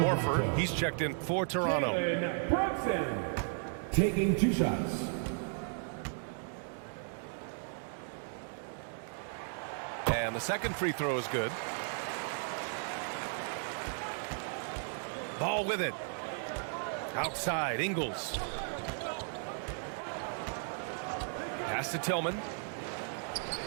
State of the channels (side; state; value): left; silent; 54 dB below the other